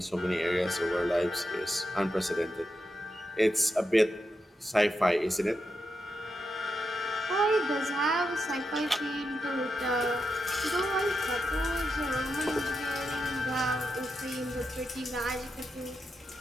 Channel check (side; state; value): both; normal; correlation 0.86